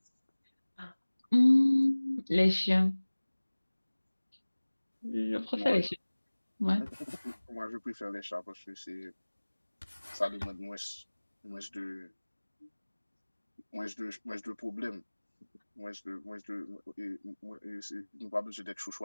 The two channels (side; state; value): both; inverted; correlation -1.00